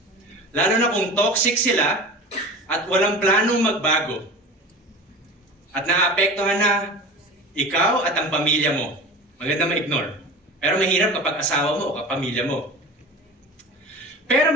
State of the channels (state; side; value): normal; both; correlation 0.34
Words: Lalo na kung toxic sila at walang planong magbago. At naapektuhan na ikaw at ang pamilya mo. Maganda ma-ignore. Pero mahirap kapag asawa mo o kapamilya mo. Pero